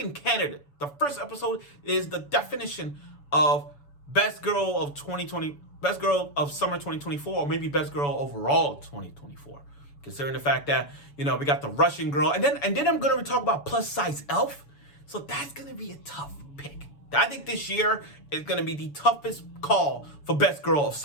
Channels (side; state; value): right; late; 7.0 ms